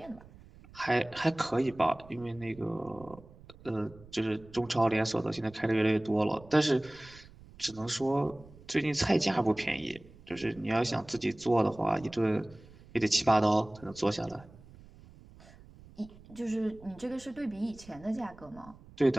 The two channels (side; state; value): right; noise; rumble, 22 dB below the sound